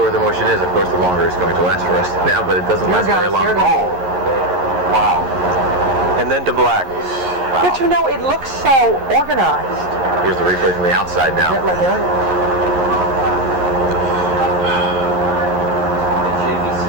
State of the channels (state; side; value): late; left; 11 ms